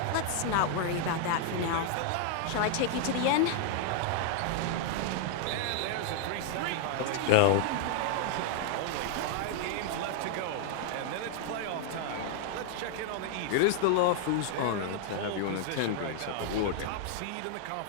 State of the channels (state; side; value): different; both; correlation 0.00